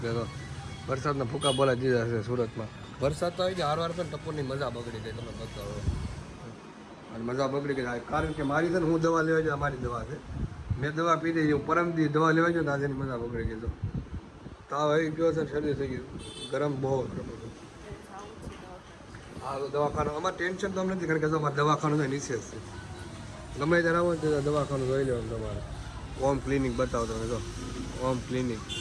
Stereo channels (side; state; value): both; identical; correlation 1.00